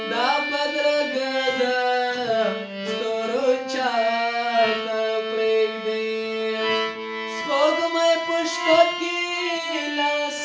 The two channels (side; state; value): both; identical; correlation 1.00